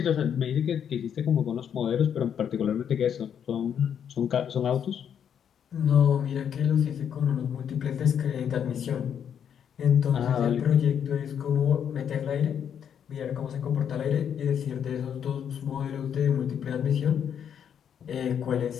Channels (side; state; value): right; quieter; 8.4 dB